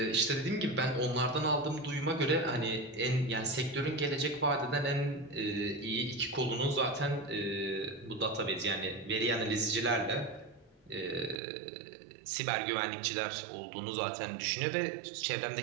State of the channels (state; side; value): drops out; left; at 11.4 s